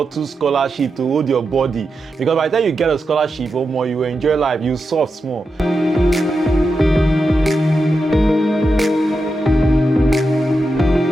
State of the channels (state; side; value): normal; both; correlation 0.88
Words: 2 scholarships to hold your body. Because by the time you get a scholarship, you will enjoy life, you soft small.